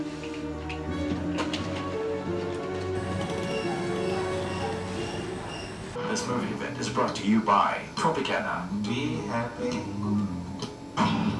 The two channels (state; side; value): identical; both; correlation 1.00